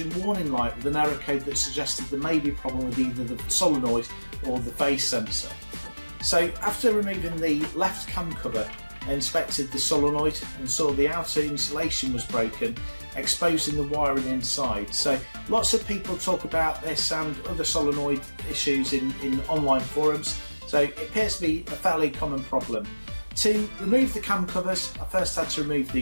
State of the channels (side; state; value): both; inverted; correlation -1.00